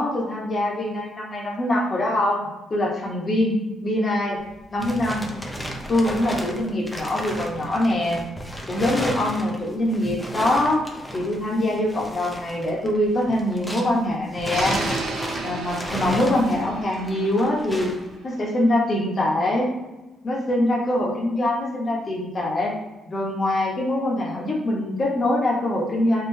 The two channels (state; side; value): normal; both; correlation 0.77